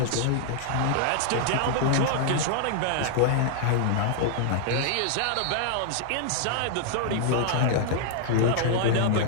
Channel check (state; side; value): different; both; correlation -0.01